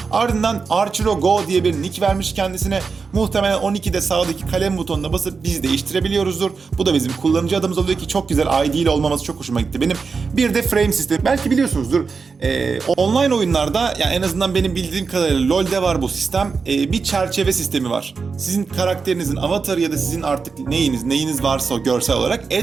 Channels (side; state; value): left; quieter; 5.0 dB